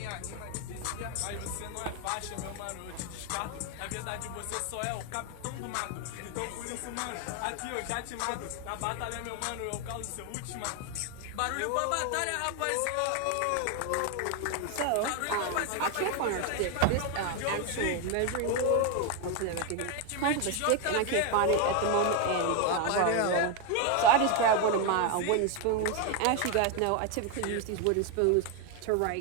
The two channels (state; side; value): different; both; correlation 0.01